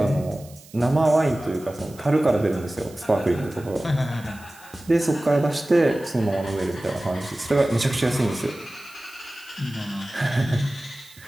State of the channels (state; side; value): noise; right; hiss, 23 dB below the sound